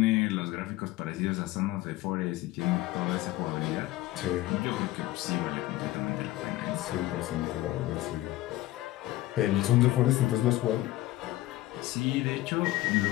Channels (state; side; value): quieter; right; 17.0 dB